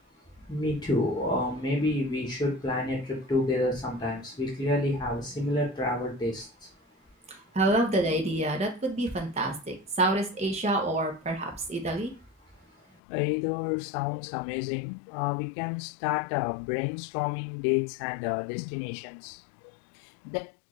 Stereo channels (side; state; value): right; drops out; at 13.0 s